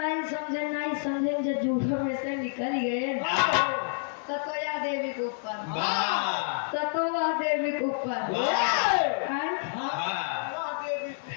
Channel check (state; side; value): silent; right; digital silence